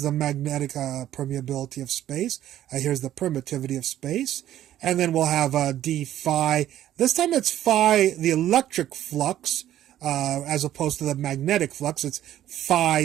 the magnetic permeability of space. Here's the permittivity of space. And then we'll have d phi. This time it's phi, the electric flux, as opposed to the magnetic flux. It's phi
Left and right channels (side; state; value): left; quieter; 12.5 dB